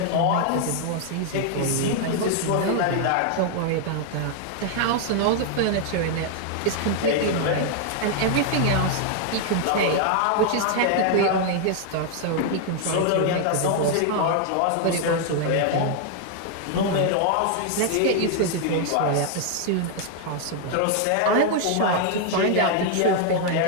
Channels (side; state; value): both; different; correlation 0.00